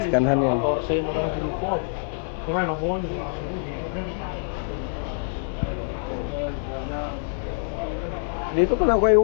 skanhan yan. Dito pala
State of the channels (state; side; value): silent; right; 60 dB below the other